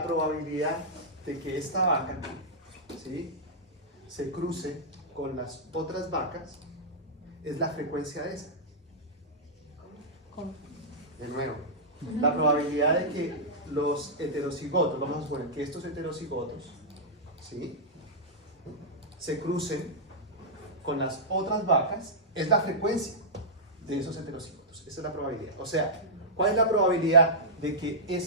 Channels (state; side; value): normal; both; correlation -0.13